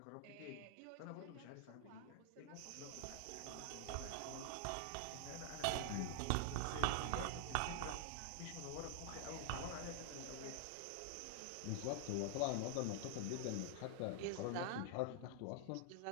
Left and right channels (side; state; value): both; different; correlation 0.00